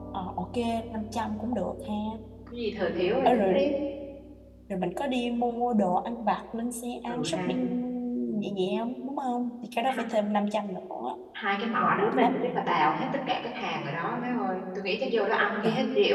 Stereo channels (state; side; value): identical; both; correlation 1.00